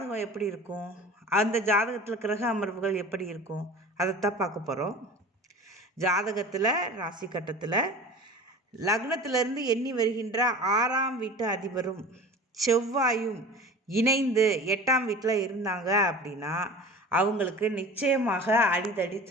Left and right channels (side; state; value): both; normal; correlation 0.38